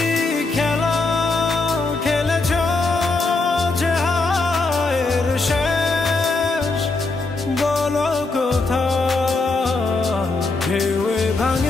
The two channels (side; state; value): right; quieter; 3.6 dB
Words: খেলা খেলেছ যে হায়ের শেষ বলো কোথায়? ঢেউয়ে